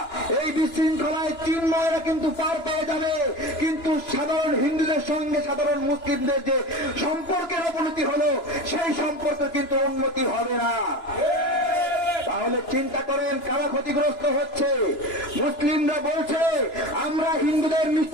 এই বিশৃঙ্খলায় চিন্ময়রা কিন্তু পার পেয়ে যাবে, কিন্তু সাধারণ হিন্দুদের সঙ্গে সাধারণ মুসলিমদের যে সম্পর্কের অবনতি হলো, সেই সম্পর্কে কিন্তু উন্নতি হবে না। তাহলে চিন্তা করেন কারা ক্ষতিগ্রস্ত হচ্ছে? মুসলিমরা বলছে আমরা হিন্দুদের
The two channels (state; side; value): late; right; 2.9 ms